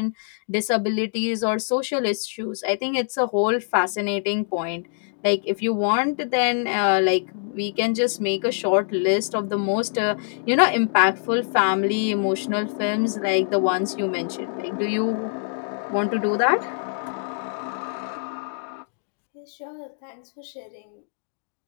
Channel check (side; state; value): right; silent; digital silence